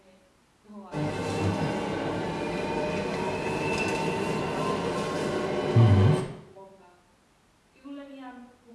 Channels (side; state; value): both; identical; correlation 1.00